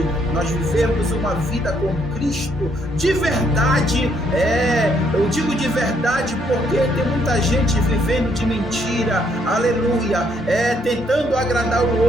nós vivemos uma vida com Cristo de verdade, eu digo de verdade porque tem muita gente vivendo de mentira, aleluia. aleluia, tentando agradar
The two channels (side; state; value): both; normal; correlation 0.70